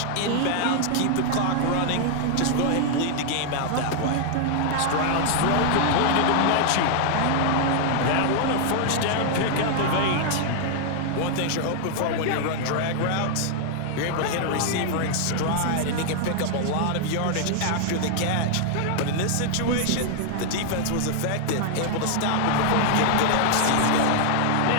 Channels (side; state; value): both; different; correlation 0.00